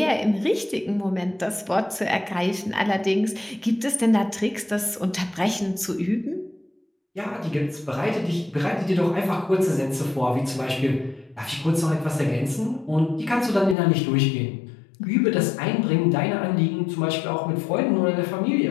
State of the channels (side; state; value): right; drops out; at 13.8 s